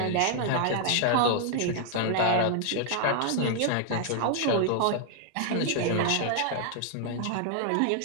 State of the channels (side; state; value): both; different; correlation 0.00